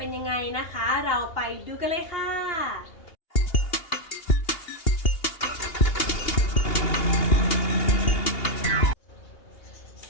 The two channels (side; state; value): right; late; 2.8 ms